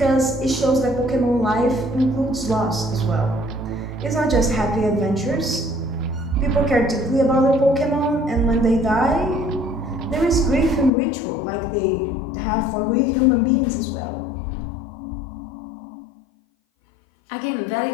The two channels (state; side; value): drops out; right; at 10.9 s